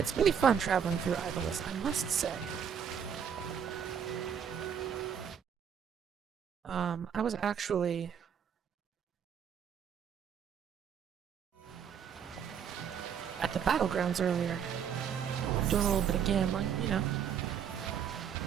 really fun traveling through Ivalince, I must say. I was actually at the battlegrounds earlier, doing a little bit of gambling, you know.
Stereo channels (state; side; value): quieter; left; 7.9 dB